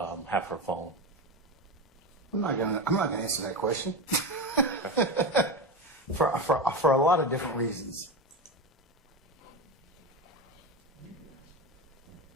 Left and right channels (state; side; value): normal; both; correlation 0.20